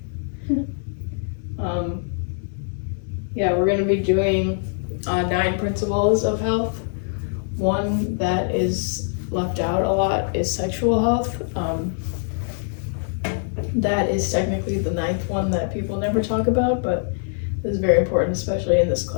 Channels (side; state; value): right; silent; digital silence